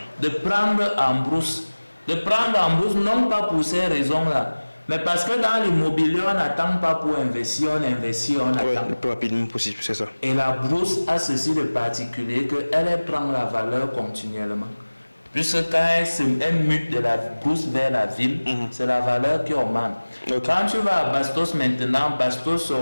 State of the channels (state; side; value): inverted; both; correlation -1.00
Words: de prendre en Brousse. De prendre en Brousse, non pas pour ces raisons-là, mais parce que dans l'immobilier, on n'attend pas pour investir, on investit, on attend. Le plus rapidement possible, c'est ça. Et la Brousse a ceci de particulier qu'elle prend la valeur continuellement. Puisque quand elle mute de la Brousse vers la ville, c'est la valeur qui augmente. Quand tu vas à Bastos maintenant, Bastos